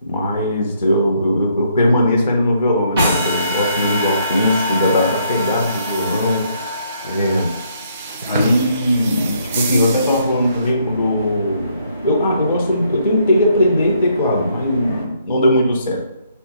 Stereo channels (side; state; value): both; inverted; correlation -0.70